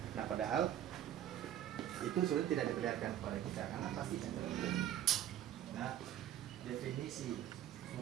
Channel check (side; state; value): left; quieter; 11.5 dB